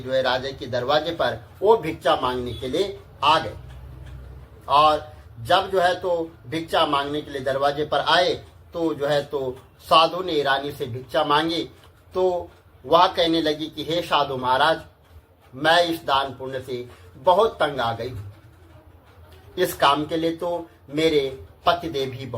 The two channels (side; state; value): both; identical; correlation 1.00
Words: है राजा के दरवाजे पर वो भिक्षा मांगने के लिए आ गए। और जब जो है तो भिक्षा मांगने के लिए दरवाजे पर आए तो जो है तो साधु ने रानी से भिक्षा मांगी। तो वह कहने लगी कि हे साधु महाराज, मैं इस दान पुण्य से बहुत तंग आ गई हूँ। इस काम के लिए तो मेरे पतिदेव ही